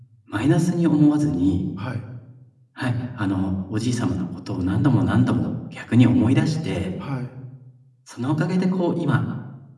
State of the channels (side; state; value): both; identical; correlation 1.00